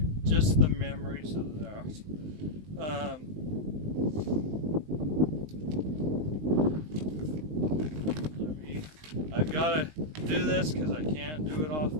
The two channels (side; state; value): left; late; 19 ms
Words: just the memories of that. I've got to do this because I can't do it off